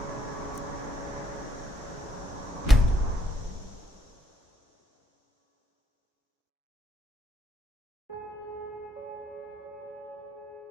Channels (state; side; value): normal; both; correlation 0.73